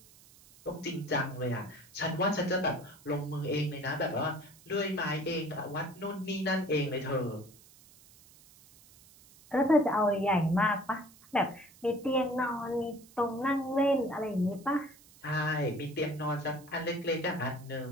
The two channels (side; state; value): right; noise; hiss, 24 dB below the sound